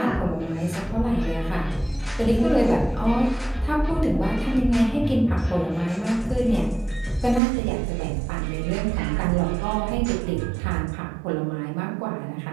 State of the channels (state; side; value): drops out; left; at 7.4 s